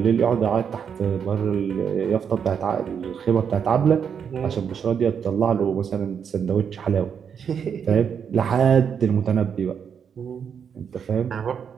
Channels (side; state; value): left; quieter; 7.3 dB